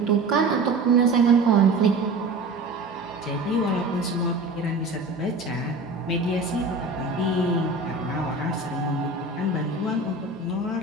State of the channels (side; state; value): left; quieter; 3.1 dB